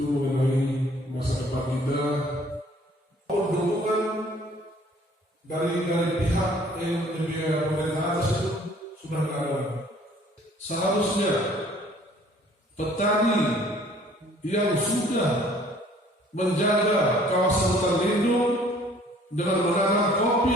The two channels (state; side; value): normal; both; correlation 0.56